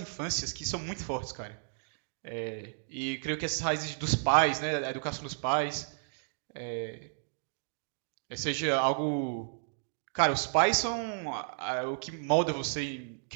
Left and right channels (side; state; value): left; silent; digital silence